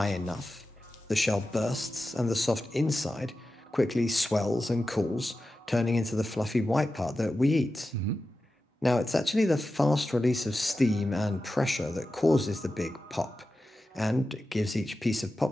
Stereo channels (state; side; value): normal; both; correlation 0.93